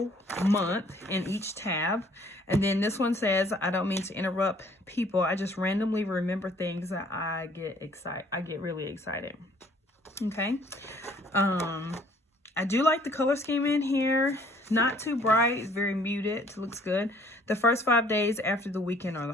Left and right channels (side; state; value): both; normal; correlation 0.59